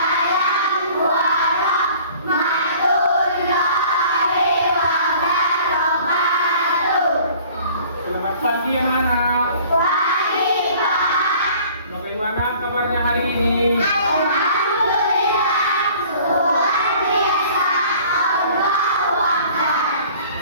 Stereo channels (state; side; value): inverted; both; correlation -0.51